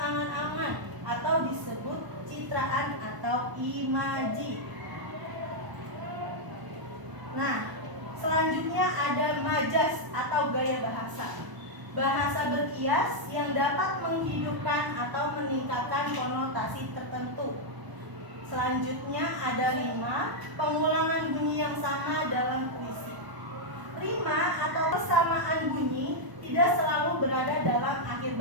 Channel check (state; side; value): late; left; 1.0 ms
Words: atau disebut citraan atau imaji. Nah, selanjutnya ada majas atau gaya bahasa. Bahasa berkias yang dapat menghidupkan atau meningkatkan konotasi tertentu. Selanjutnya ada rima, pengulangan bunyi yang sama dalam puisi. Rima atau persamaan bunyi tidak selalu berada dalam akhir